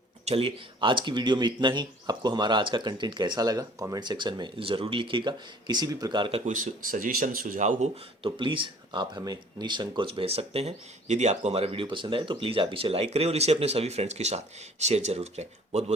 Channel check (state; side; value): normal; both; correlation 0.52